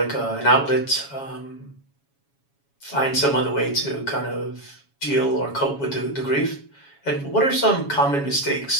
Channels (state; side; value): late; right; 7.2 ms